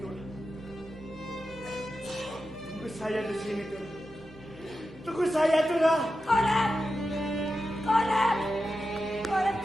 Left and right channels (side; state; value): both; normal; correlation 0.91